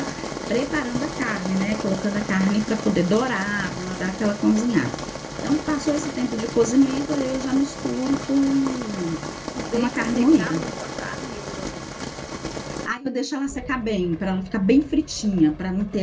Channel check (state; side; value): identical; both; correlation 1.00